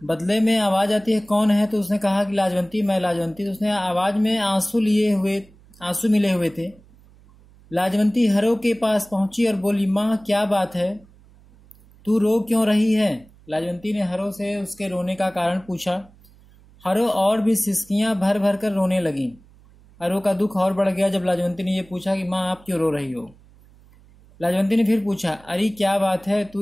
बदले में आवाज आती है, कौन है। तो उसने कहा कि लाजवंती, मैं लाजवंती। तो उसने आवाज में आंसू मिले हुए थे। लाजवंती हरो के पास पहुंची और बोली, माँ क्या बात है, तू रो क्यों रही है। लाजवंती ने हरो से उसके रोने का कारण पूछा। हरो और भी सिसकियां भर भर कर रोने लगी। हरो का दुख और बढ़ गया जब लाजवंती ने यह पूछा कि माँ आप क्यों रो रही हो। लाजवंती ने फिर पूछा, अरे क्या बात है,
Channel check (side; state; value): right; noise; hum, 27 dB below the sound